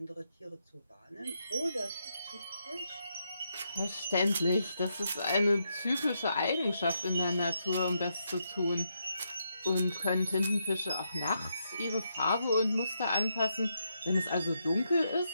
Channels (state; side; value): inverted; both; correlation -0.80